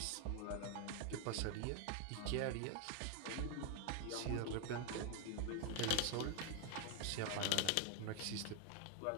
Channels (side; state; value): both; different; correlation 0.00